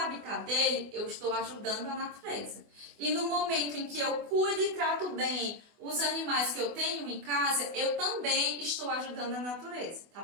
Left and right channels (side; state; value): left; late; 24 ms